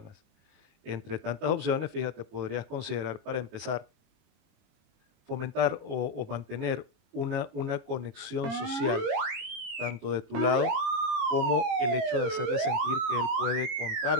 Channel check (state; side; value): late; left; 22 ms